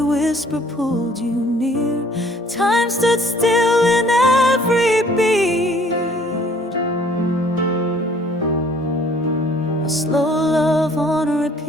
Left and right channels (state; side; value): normal; both; correlation 0.57